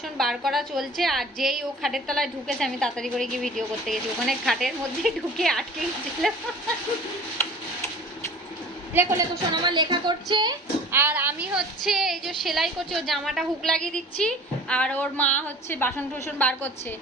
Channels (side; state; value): both; normal; correlation 0.43